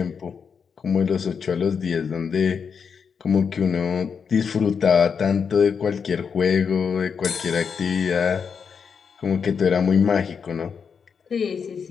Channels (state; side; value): quieter; right; 6.3 dB